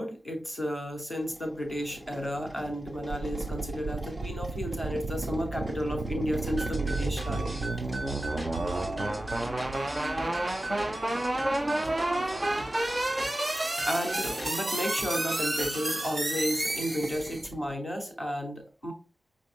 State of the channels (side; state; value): both; normal; correlation 0.93